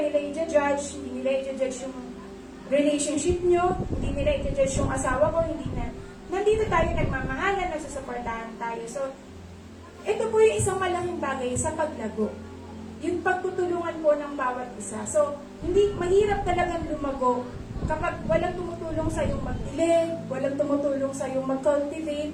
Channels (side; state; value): both; identical; correlation 1.00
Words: i-judge, hindi nila i-judge yung relationship nyo, hindi nila i-judge yung asawa ko, hindi na, nandito tayo nagmamahalan, nagsusuportahan tayo. So, ito po yung isang malaking bagay sa paglago. Yung pagtutulungan po ng bawat isa. So, hindi, mahirap talagang lumago kapag walang tumutulong sa yung magdilig, walang tumutulong sa yung mag-cultivate.